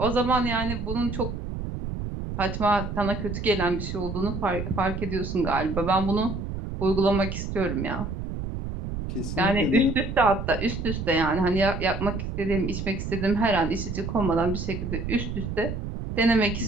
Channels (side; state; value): right; noise; rumble, 5 dB below the sound